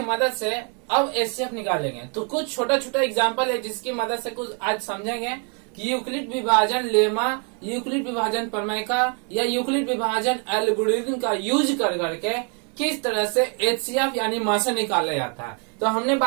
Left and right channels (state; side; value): quieter; left; 38.8 dB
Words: मदद से अब एचसीएफ निकालेंगे। तो कुछ छोटा छोटा एग्जाम्पल है जिसकी मदद से कुछ आज समझेंगे कि यूक्लिड विभाजन लेमा, यूक्लिड विभाजन प्रमेय का या यूक्लिड विभाजन एल्गोरिथम का यूज कर करके किस तरह से एचसीएफ यानी मासे निकाला जाता है। तो हमने